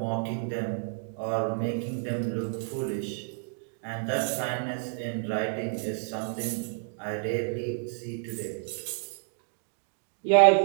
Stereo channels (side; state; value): left; silent; digital silence